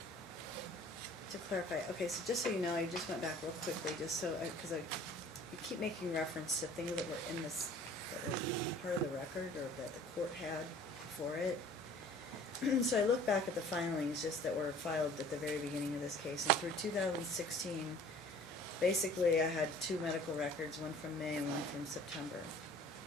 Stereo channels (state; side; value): normal; both; correlation 0.49